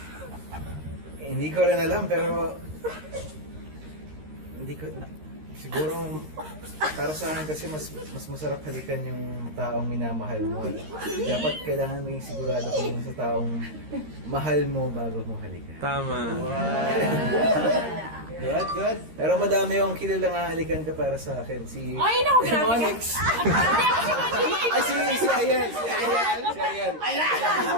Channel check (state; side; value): late; left; 13 ms